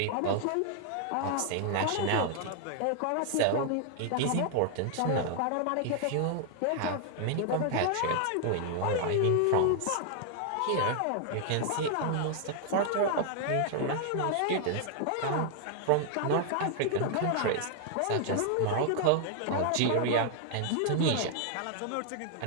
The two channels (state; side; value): different; both; correlation 0.00